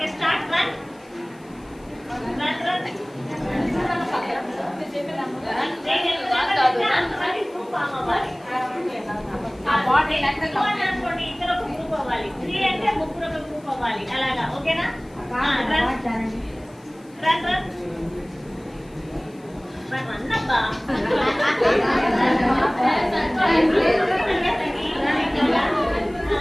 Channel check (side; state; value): left; noise; hiss, 29 dB below the sound